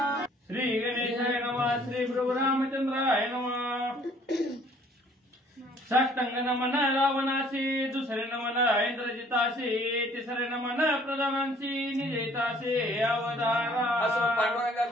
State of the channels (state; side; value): normal; both; correlation 0.58